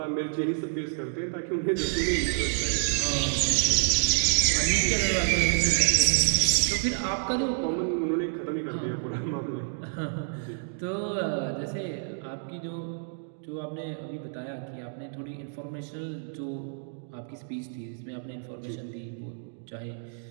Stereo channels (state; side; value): silent; left; digital silence